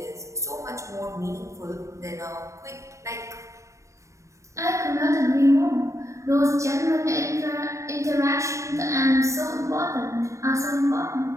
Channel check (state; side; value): late; left; 0.15 ms